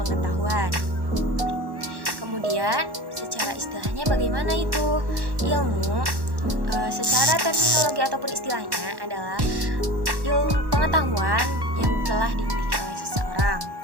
pengetahuan. Kemudian secara istilahnya bagaimana itu? Ilmu secara terminologi ataupun istilahnya adalah ilmu pengetahuan yang telah dimiliki oleh seseorang.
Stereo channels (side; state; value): left; late; 1.1 ms